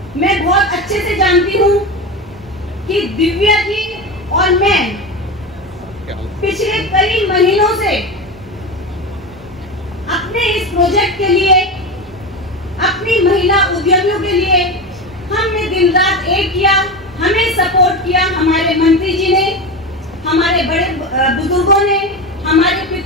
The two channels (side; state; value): both; normal; correlation 0.22